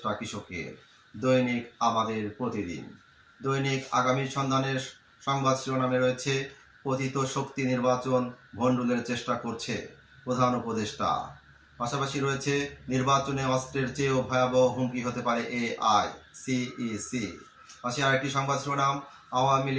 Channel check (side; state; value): both; identical; correlation 1.00